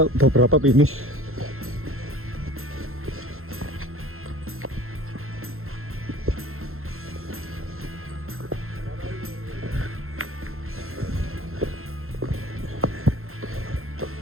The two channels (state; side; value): late; left; 0.62 ms